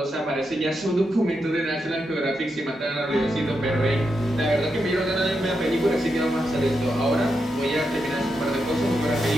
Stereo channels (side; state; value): both; normal; correlation 0.85